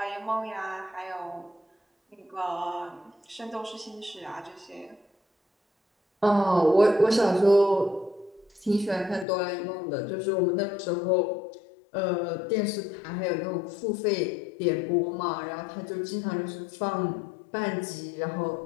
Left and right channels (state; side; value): drops out; right; at 9.2 s